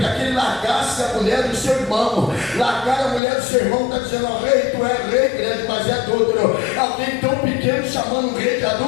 que ele largasse a mulher do seu irmão, largar a mulher do seu irmão, está dizendo, ó rei, tu é rei grande, mas é adúltero. Alguém tão pequeno chamando um rei de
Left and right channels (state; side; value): drops out; right; at 3.2 s